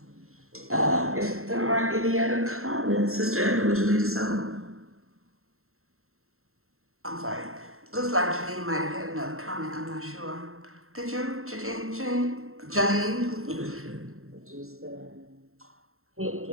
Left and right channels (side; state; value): left; late; 0.62 ms